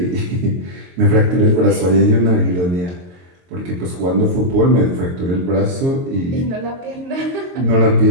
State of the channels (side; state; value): left; late; 22 ms